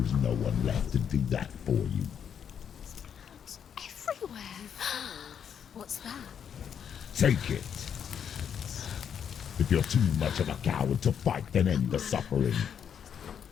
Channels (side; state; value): right; quieter; 8.1 dB